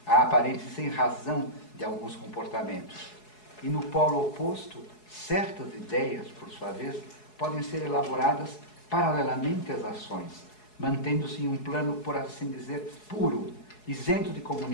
a aparente sem razão de alguns comportamentos. E no polo oposto, certas ideias, por sua vez, podem ser elaboradas paralelamente às ações, mantendo-se em um plano, por assim dizer, puro, isento de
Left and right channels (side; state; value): right; late; 4.7 ms